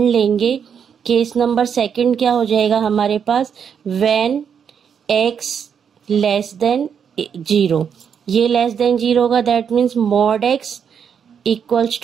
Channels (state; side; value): quieter; left; 7.4 dB